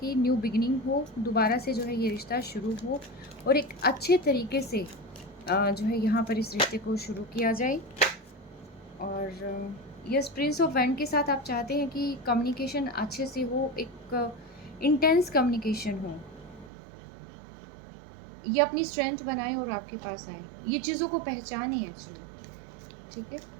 न्यू बिगिनिंग हो, दोबारा से जो है ये रिश्ता शुरू हो, और एक अच्छे तरीके से जो है यहाँ पर इस रिश्ते को शुरू किया जाए। और यस, प्रिंस ऑफ वैंड के साथ आप चाहते हैं कि कम्युनिकेशन अच्छे से हो, एक इंटेंस कम्युनिकेशन हो, ये अपनी स्ट्रेंथ बनाए और आपके पास आए, ये चीज़ों को पहचाने एक्चुअली, ठीक है?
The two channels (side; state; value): left; drops out; at 16.7 s